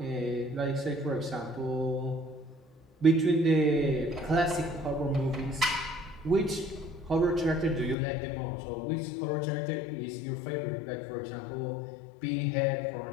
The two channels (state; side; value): drops out; right; at 8.0 s